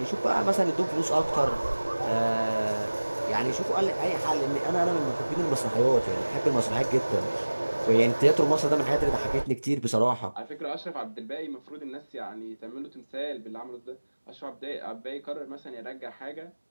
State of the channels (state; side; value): inverted; both; correlation -1.00